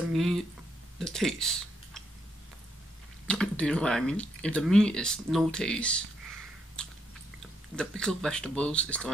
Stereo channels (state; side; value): normal; both; correlation 0.77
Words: meat the taste. Do you know what I mean? If the meat is no taste, the pickled vegetables is the